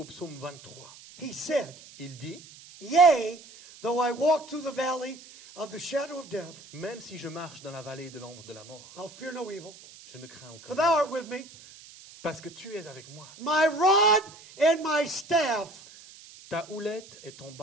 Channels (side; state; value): right; noise; hiss, 20 dB below the sound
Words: psaume 23, he said, il dit, yea, though I walk through the valley of the shadow of death, même si je marche dans la vallée de l'ombre de la mort, I'll fear no evil, je ne crains aucun for mal, thou art with me. parce que tu es avec moi. My rod and my staff Ta houlette et ton